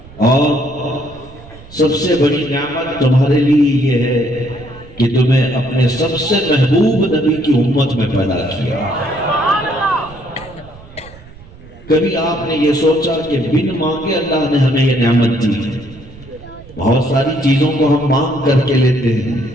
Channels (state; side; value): noise; right; rumble, 20 dB below the sound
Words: اور سب سے بڑی نعمت تمہارے لیے یہ ہے کہ تمہیں اپنے سب سے محبوب نبی کی امت میں پیدا کیا۔ کبھی آپ نے یہ سوچا کہ بن مانگے اللہ نے ہمیں یہ نعمت دی ہے؟ بہت ساری چیزوں کو ہم مانگ کر کے لیتے ہیں،